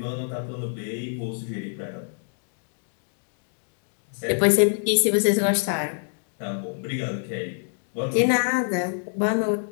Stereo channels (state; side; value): silent; right; 61 dB below the other